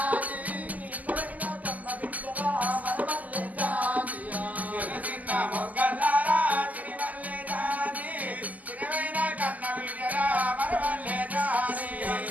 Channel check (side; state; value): left; late; 0.078 ms